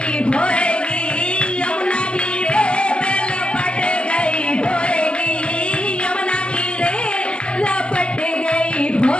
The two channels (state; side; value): late; right; 0.057 ms